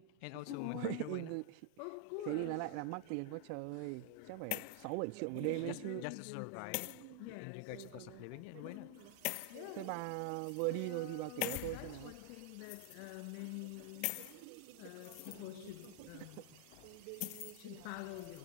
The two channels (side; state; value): both; different; correlation 0.00